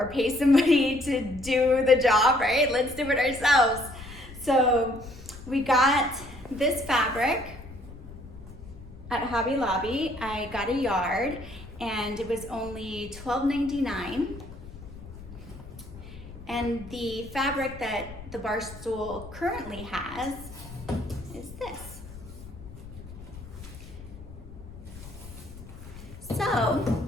pay somebody to do the job, right? Let's do it ourselves. So we got this fabric at Hobby Lobby. I got a yard and it was only $12.99. And the fabric that the bar stool currently has is this. So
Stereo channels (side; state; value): left; noise; rumble, 15 dB below the sound